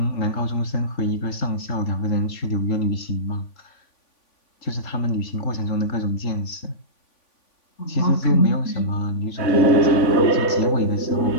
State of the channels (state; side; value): late; right; 3.5 ms